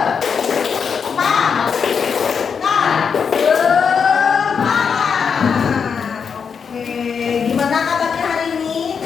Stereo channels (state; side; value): quieter; right; 6.4 dB